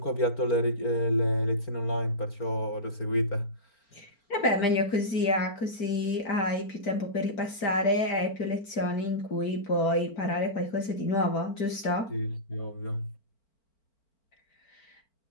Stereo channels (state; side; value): late; right; 5.0 ms